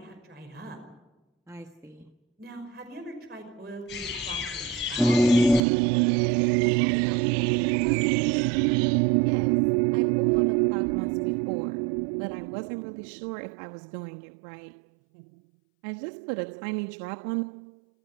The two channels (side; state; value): left; drops out; at 5.6 s